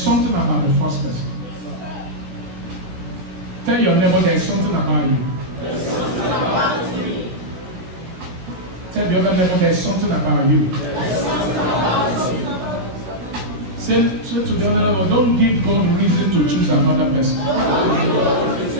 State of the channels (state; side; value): late; left; 16 ms